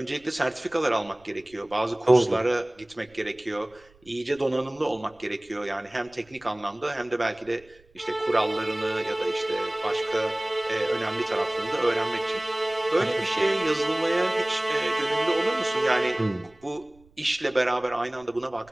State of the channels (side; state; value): right; noise; rumble, 29 dB below the sound